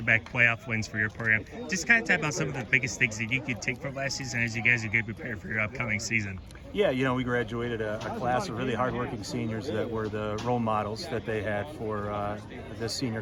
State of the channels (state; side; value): identical; both; correlation 1.00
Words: playoff wins for your program. Just kind of talk about some of the biggest things that you could take from last season as you guys are getting prepared for your upcoming season. Yeah, we graduated a class of really hardworking seniors that were the role models that they had for this senior